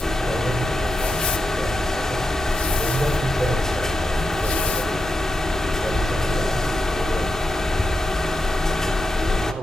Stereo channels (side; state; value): both; normal; correlation 0.88